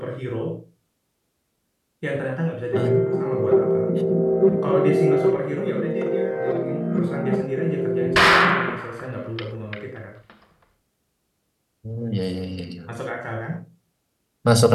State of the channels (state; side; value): identical; both; correlation 1.00